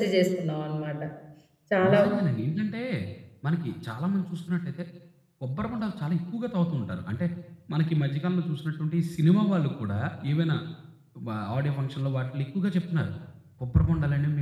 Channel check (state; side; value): identical; both; correlation 1.00